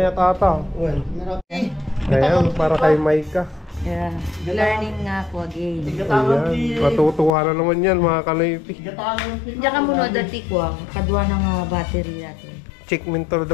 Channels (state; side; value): drops out; right; at 7.3 s